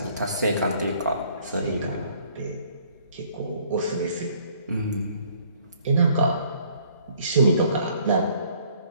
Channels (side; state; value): both; inverted; correlation -0.60